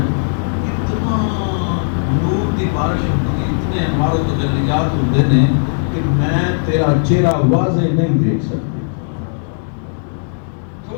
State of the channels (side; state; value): right; silent; digital silence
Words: اتنا نور کی بارش ہوتی اتنے انوار و تجلیات ہوتے ہیں کہ میں تیرا چہرہ واضح نہیں دیکھ سکتی